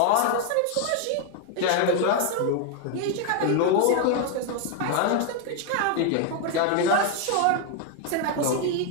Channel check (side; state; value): both; different; correlation 0.01